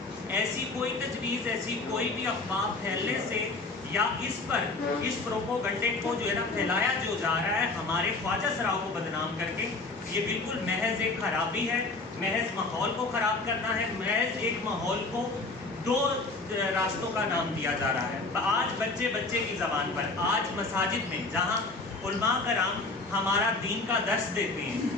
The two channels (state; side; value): quieter; right; 3.5 dB